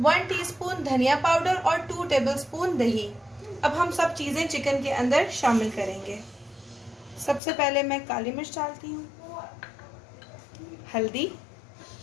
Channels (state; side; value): drops out; right; at 7.4 s